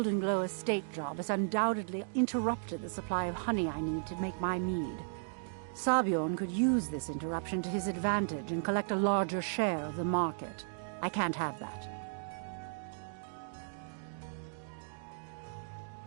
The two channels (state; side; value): silent; left; digital silence